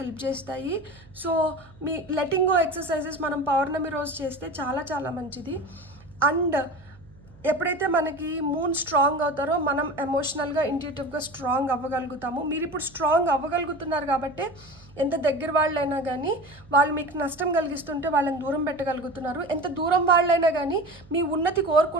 చేస్తాయి. సో మీ లెటింగ్ గో ఎక్సర్సైజెస్ మనం పౌర్ణమి రోజు చేస్తే చాలా చాలా మంచిది. అండ్ ఎప్పుడైతే మనకి మూన్ స్ట్రాంగ్ అవుతారో మనం ఎమోషనల్గా ఇంట్యూటివ్గా స్ట్రాంగ్ అవ్వగలుగుతాము. మీరు ఇప్పుడు స్ట్రాంగ్ అవ్వగలుగుతున్నారు కాబట్టి ఎంత దగ్గర వాళ్ళైనా కానీ వాళ్ళు మీకు నష్టం కలిగిస్తుంటే వాళ్ళని దూరం పెట్టగలుగుతున్నారు. ఎంత దూరం వాళ్ళైనా కానీ మీ ఉన్నతి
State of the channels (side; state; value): right; noise; hum, 24 dB below the sound